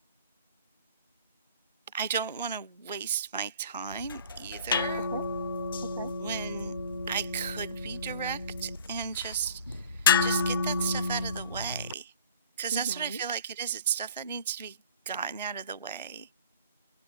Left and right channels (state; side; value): inverted; both; correlation -0.48